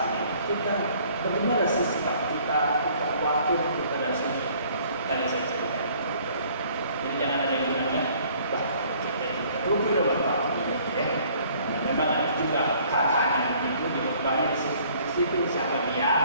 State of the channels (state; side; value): inverted; both; correlation -0.58